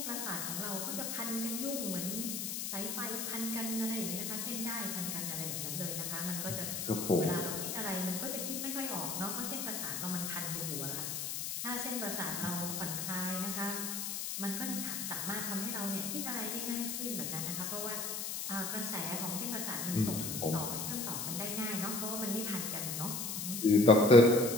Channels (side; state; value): left; noise; hiss, 3 dB below the sound